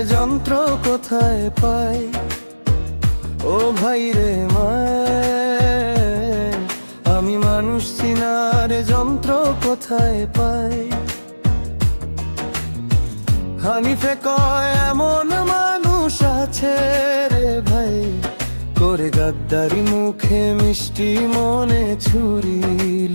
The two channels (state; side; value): inverted; both; correlation -1.00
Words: যন্ত্র কোথায় পাই, ও ভাই রে মায়। আমি মানুষ চিনার যন্ত্র কোথায় পাই। হানিফে কয় এমন মানুষ আছে রে ভাই, করে গাদ্দারি মুখে মিষ্টি মনে ছুরি